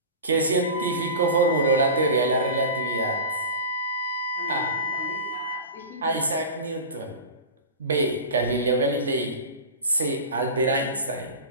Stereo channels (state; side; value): inverted; both; correlation -0.31